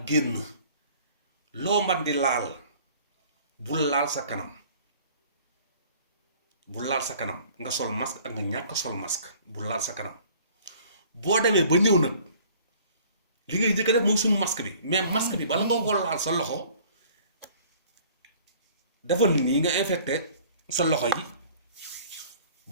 génn loo man di laal bul laal sa kanam bu laal sa kanam nga sol masque ak nga ñàkk sol masque bu laal sa kanam boo demee ba ñëw nag li ngay njëkk a def mooy suñu masque bi mais masque bi bala nga ko laal sa loxo dafa nii nga infecté sa loxo yi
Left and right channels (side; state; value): both; inverted; correlation -0.52